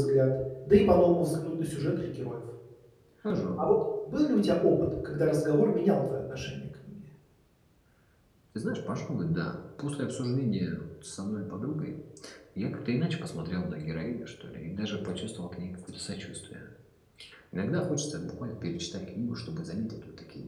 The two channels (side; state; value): both; identical; correlation 1.00